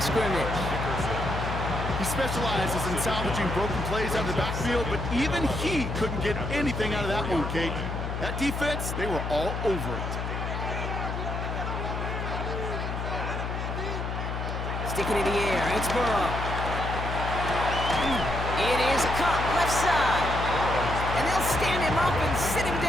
scrimmage. He specializes in salvaging broken plays out of the backfield, but even he couldn't get anything out of that one, Kate. That defense, they were all over it. Sticking in the air, it's Burrow. It is caught left side. And they'll stand him up and sit him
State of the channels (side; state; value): left; noise; hum, 4 dB below the sound